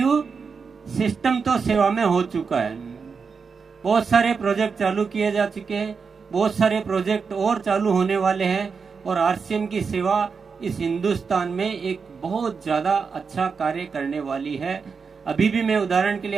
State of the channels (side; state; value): left; quieter; 5.4 dB